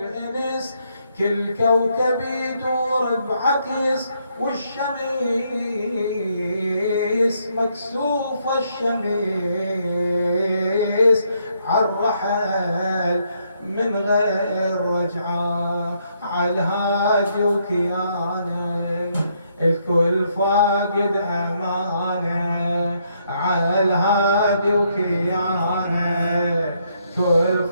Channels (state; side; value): inverted; both; correlation -0.74